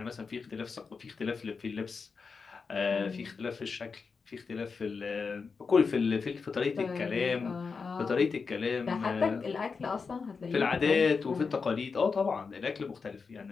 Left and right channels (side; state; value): right; quieter; 5.1 dB